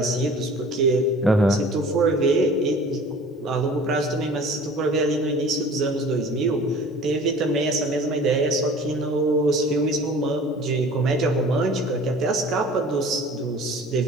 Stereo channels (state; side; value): normal; both; correlation 0.45